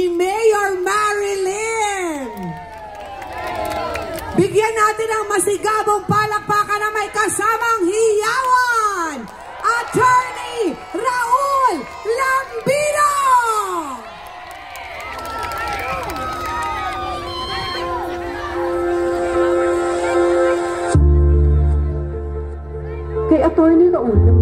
Mayor Marilyn. Bigyan natin ang masigabong palakpakan na may kasamang hiyawan, Attorney Raul Lambino! Kay Attorney Raul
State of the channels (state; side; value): noise; left; rumble, 29 dB below the sound